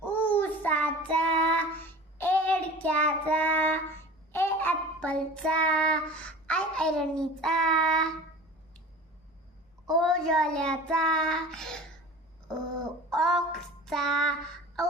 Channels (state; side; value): normal; both; correlation 0.39